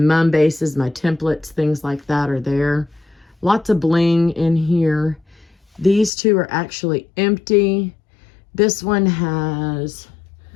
bases, my templates, things like that are there. Lots of bling in here. These two are actually empty. This one has,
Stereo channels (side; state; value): right; drops out; at 6.1 s